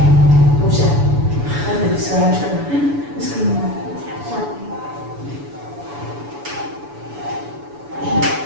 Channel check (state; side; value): late; left; 7.0 ms